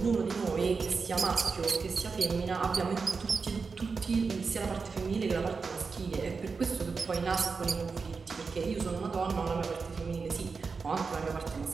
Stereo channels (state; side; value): quieter; left; 4.8 dB